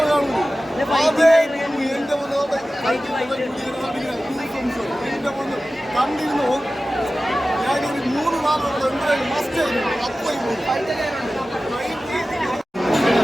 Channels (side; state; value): both; normal; correlation 0.95